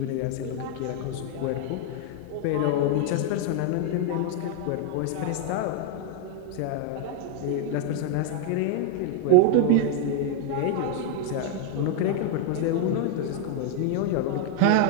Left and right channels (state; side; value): different; both; correlation 0.00